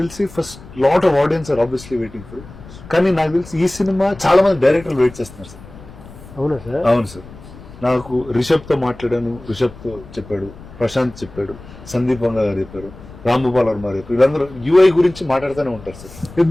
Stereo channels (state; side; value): noise; left; rumble, 18 dB below the sound